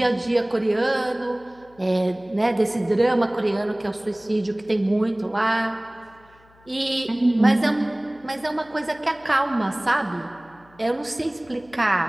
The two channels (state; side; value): noise; left; hum, 29 dB below the sound